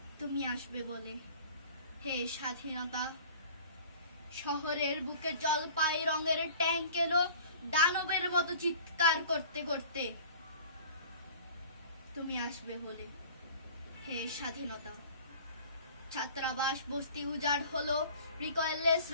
তুমি আসবে বলে হে স্বাধীনতা। শহরের বুকে জলপাই রঙের ট্যাঙ্ক এলো দানবের মতো চিৎকার করতে করতে। তুমি আসবে বলে হে স্বাধীনতা। ছাত্রাবাস বস্তি উজাড় হলো, রিকয়েললেস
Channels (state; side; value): inverted; both; correlation -0.45